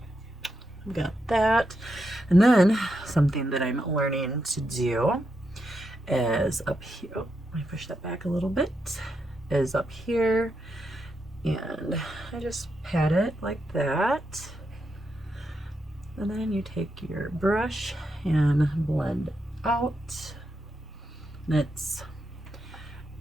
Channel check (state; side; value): normal; both; correlation 0.84